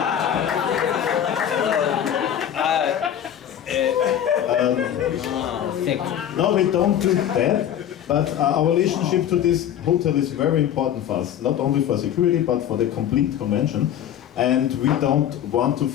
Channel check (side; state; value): right; quieter; 10.2 dB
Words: No, we don't do that, but our relationship to this hotel is very important for us, not only for security, but for the complete convention. And we don't want to